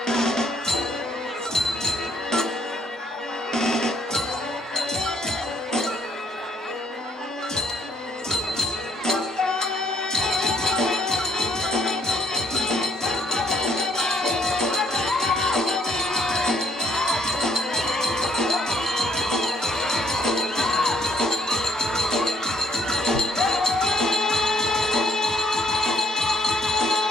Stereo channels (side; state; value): both; normal; correlation 0.66